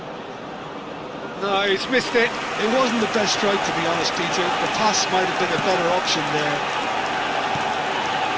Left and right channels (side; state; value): both; identical; correlation 1.00